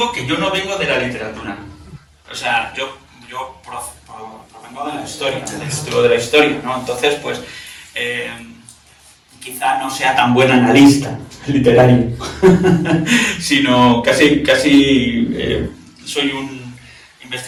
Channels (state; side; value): identical; both; correlation 1.00